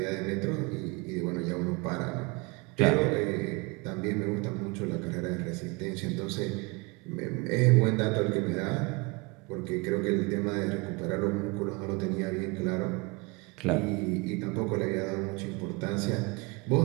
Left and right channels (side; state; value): left; quieter; 27.5 dB